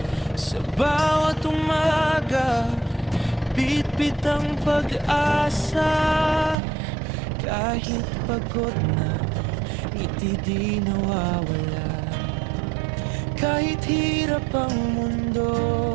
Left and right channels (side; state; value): left; drops out; at 6.6 s